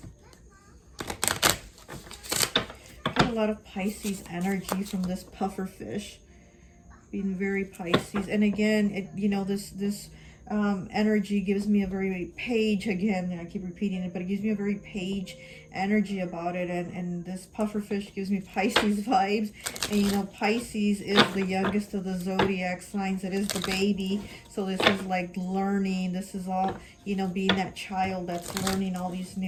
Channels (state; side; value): identical; both; correlation 1.00